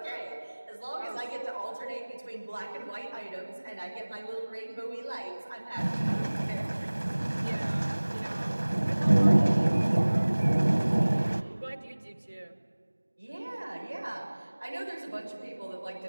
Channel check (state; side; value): inverted; both; correlation -1.00